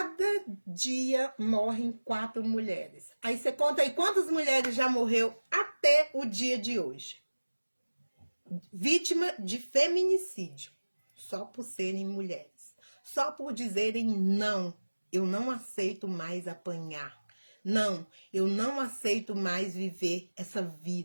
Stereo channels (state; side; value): inverted; both; correlation -1.00